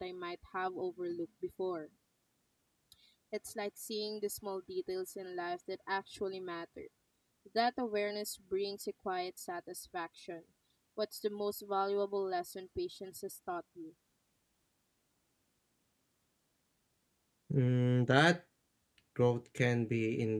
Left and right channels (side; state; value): both; identical; correlation 1.00